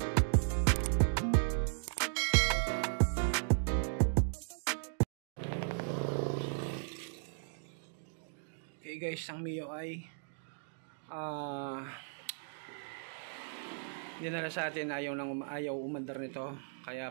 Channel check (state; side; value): silent; left; digital silence